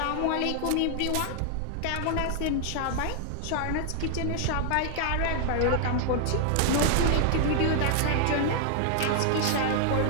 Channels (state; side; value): different; both; correlation 0.00